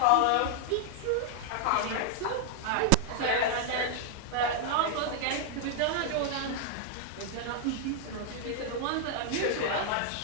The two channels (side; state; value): both; different; correlation 0.00